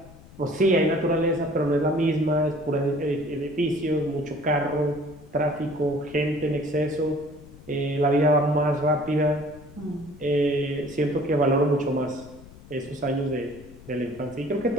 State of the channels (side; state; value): left; noise; rumble, 20 dB below the sound